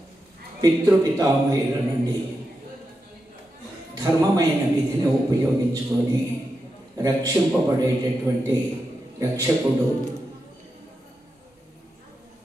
పితృపితామహుల నుండి ధర్మమైన విధిని ఉపయోగించుకొని రక్షింపబడేటటువంటి రక్షకుడు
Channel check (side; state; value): both; normal; correlation 0.88